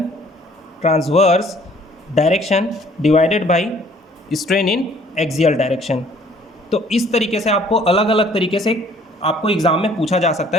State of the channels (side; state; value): both; normal; correlation 0.58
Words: direction divided by strain in axial direction. तो इस तरीके से आपको अलग अलग तरीके से आपको एग्जाम में पूछा जा सकता